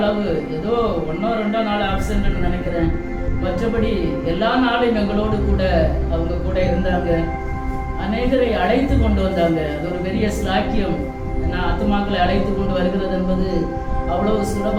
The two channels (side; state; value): both; identical; correlation 1.00